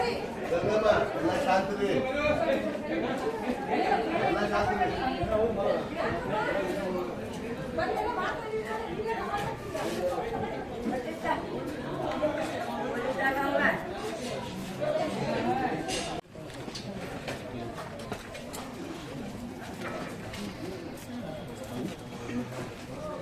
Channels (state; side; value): identical; both; correlation 1.00